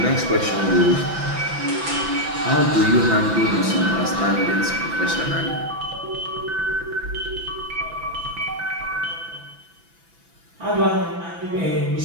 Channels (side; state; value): left; late; 6.0 ms